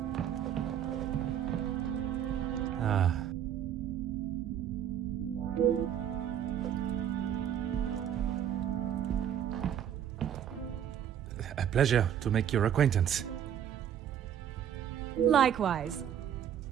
Ah. A pleasure to make your acquaintance. Likewise.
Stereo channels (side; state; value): left; quieter; 9.6 dB